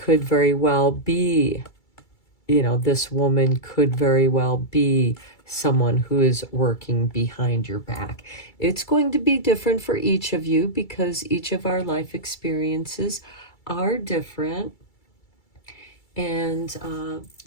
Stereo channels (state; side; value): late; right; 2.3 ms